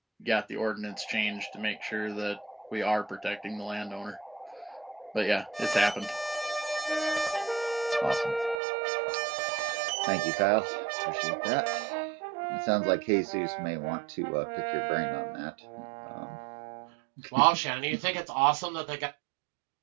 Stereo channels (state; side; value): drops out; left; at 8.6 s